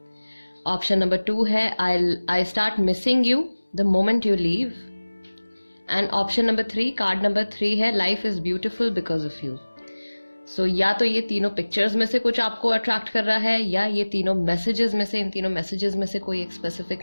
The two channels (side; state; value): both; inverted; correlation -1.00